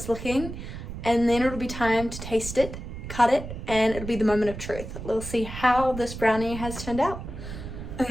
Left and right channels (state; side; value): noise; right; rumble, 9 dB below the sound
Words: looking. And then it'll be time to taste it, cut it, and it'll be the moment of truth. We'll see how this brownie has turned out.